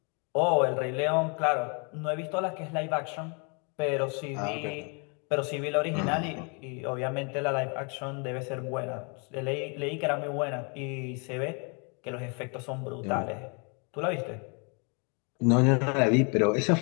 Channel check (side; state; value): right; quieter; 35.0 dB